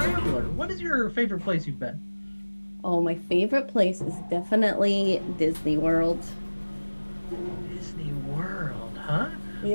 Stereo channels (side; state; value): both; inverted; correlation -1.00